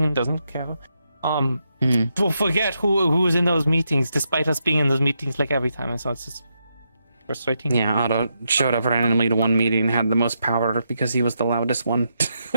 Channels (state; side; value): inverted; both; correlation -0.82